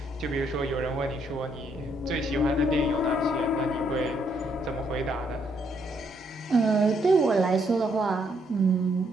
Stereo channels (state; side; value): normal; both; correlation 0.73